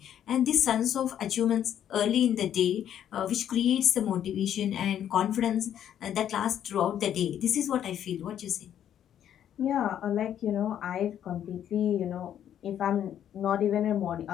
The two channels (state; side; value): quieter; right; 10.1 dB